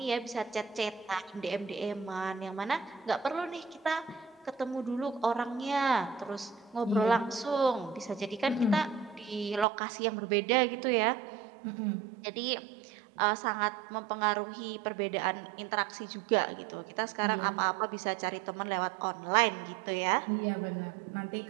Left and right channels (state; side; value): drops out; left; at 9.7 s